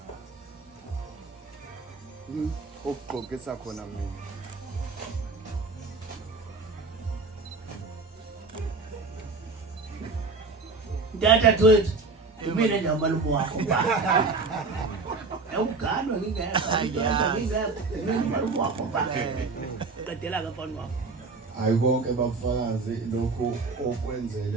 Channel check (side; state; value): left; quieter; 4.0 dB